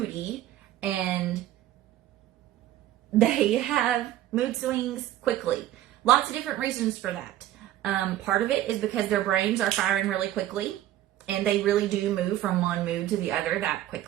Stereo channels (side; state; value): left; quieter; 13.4 dB